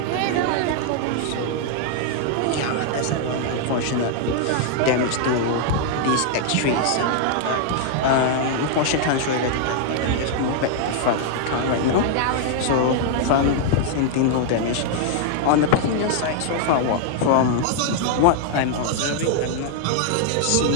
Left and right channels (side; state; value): both; different; correlation 0.00